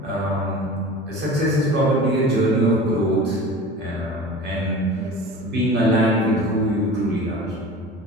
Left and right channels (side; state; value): both; normal; correlation 0.37